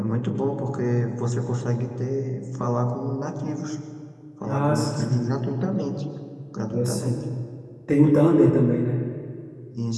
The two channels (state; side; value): identical; both; correlation 1.00